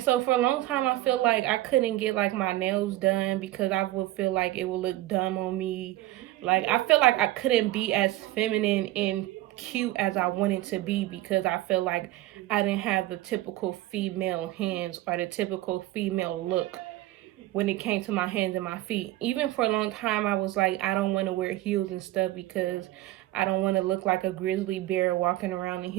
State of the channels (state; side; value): quieter; left; 16.3 dB